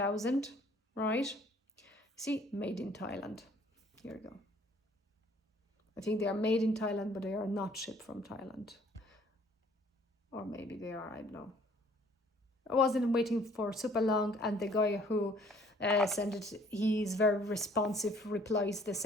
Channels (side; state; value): both; normal; correlation 0.58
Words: right? See, made in Thailand. Here we go. I think they are made in Thailand, but they are not shipped from Thailand. Or maybe they are, I don't know. I wasn't waiting for super long, and the guy who sent it, he's very responsive, replies the